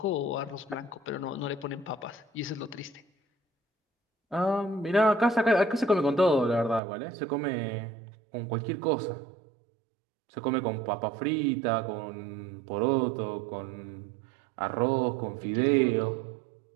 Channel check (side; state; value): left; drops out; at 6.8 s